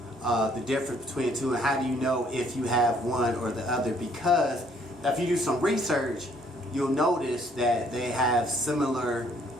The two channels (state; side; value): normal; both; correlation 0.64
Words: the difference between the two, and how do you know if you have one or the other? Because if you do some research, you'll notice that they have similar